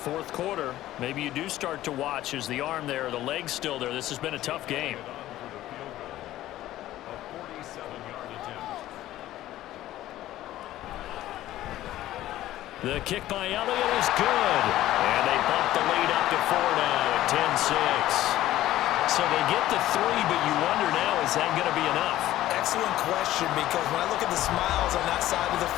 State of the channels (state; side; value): quieter; right; 14.4 dB